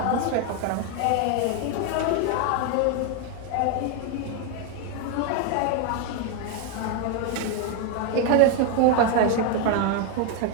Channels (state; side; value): different; both; correlation 0.01